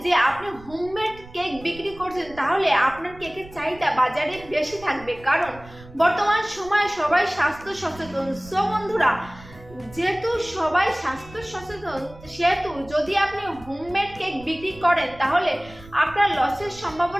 যে আপনি হোমমেড কেক বিক্রি করছেন তাহলে আপনার কেকের চাহিদা বাজারে বেশি থাকবে, কারণ বর্তমান সময়ে সবাই স্বাস্থ্য সচেতন। সো বন্ধুরা, যেহেতু সবাই স্বাস্থ্য সচেতন সেহেতু যদি আপনি হোমমেড কেক বিক্রি করেন তাহলে আপনার লসের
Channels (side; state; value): right; noise; rumble, 19 dB below the sound